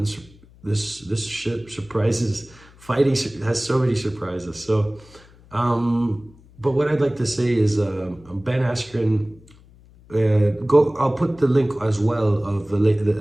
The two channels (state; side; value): noise; left; hum, 25 dB below the sound